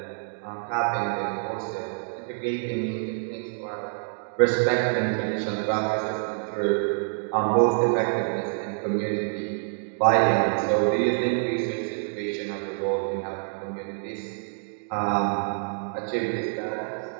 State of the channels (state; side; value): silent; left; digital silence